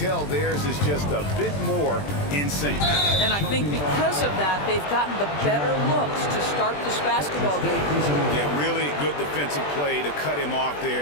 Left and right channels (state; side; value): late; right; 20 ms